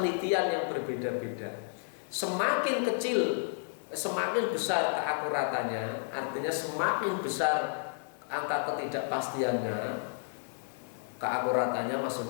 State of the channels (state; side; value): silent; right; digital silence